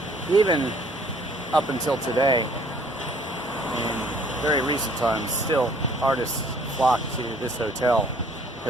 even up until today, in very recent times, still artists flock to this hotel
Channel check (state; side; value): normal; both; correlation 0.58